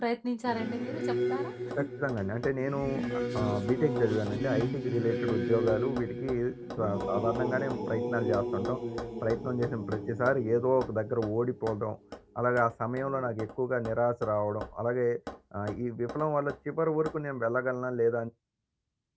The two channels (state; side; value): identical; both; correlation 1.00